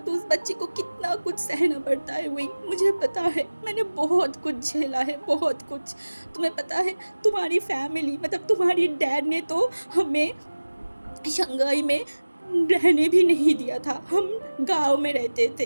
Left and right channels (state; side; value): inverted; both; correlation -1.00